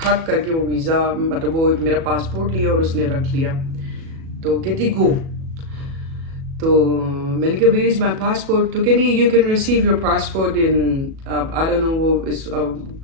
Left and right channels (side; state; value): left; late; 37 ms